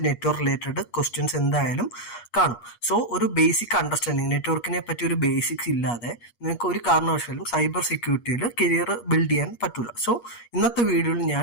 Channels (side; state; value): right; late; 8.4 ms